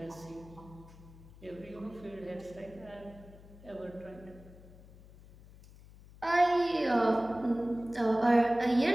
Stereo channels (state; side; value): noise; left; hum, 21 dB below the sound